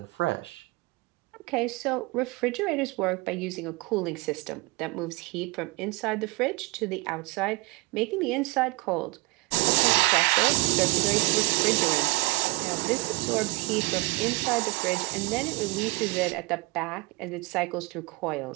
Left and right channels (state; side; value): quieter; left; 25.4 dB